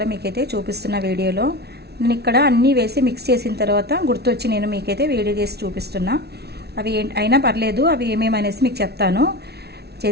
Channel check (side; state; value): left; late; 0.48 ms